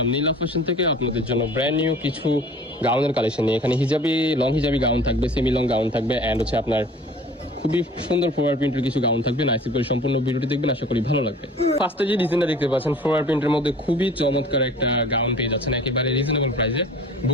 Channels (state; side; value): normal; both; correlation 0.46